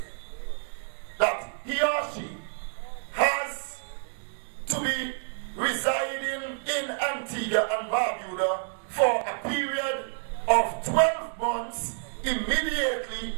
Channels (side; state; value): left; silent; digital silence